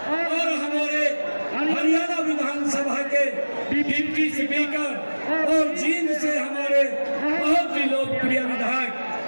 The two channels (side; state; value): both; inverted; correlation -1.00